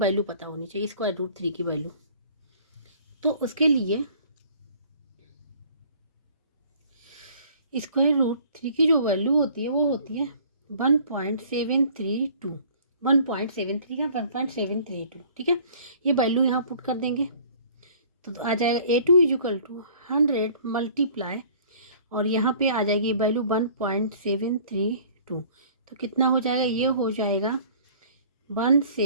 पता होनी चाहिए, स्क्वायर रूट 3 की वैल्यू। तो उसके लिए स्क्वायर रूट 3 की जो वैल्यू होती है वो होती है 1.732, 1.73 का 1.732। ठीक है, ये वैल्यू यहाँ पुट कर देंगे तो आ जाएगा A2 = 100 मल्टीप्लाई, और यहाँ पे आ जाएगी वैल्यू 1.732। तो कितना हो जाएगा, ये हो जाएगा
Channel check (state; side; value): inverted; both; correlation -0.52